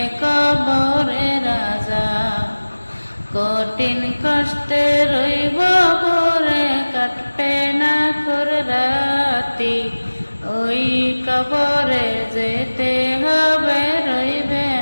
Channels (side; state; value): both; inverted; correlation -1.00